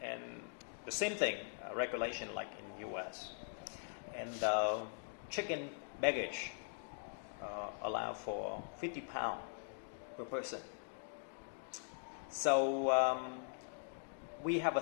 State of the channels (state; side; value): silent; right; digital silence